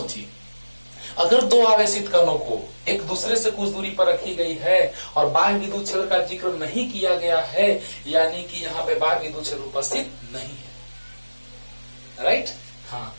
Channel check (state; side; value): inverted; both; correlation -1.00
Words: अगर 2 आवेशित कणों को एक दूसरे से कुछ दूरी पर रखी गई है और बाह्य विद्युत क्षेत्र का जिक्र नहीं किया गया है, यानी कि यहाँ पे बाह्य विद्युत क्षेत्र उपस्थित नहीं है। राइट, हाँ,